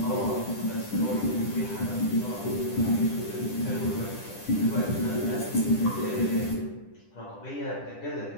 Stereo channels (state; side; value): late; right; 10 ms